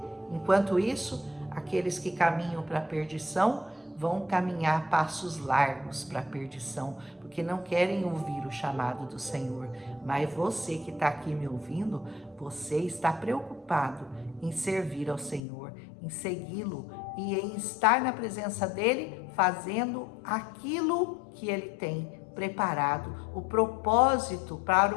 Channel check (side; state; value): right; drops out; at 15.4 s